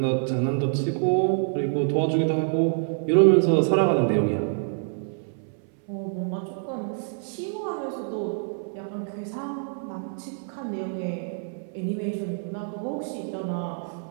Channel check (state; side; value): silent; left; 61 dB below the other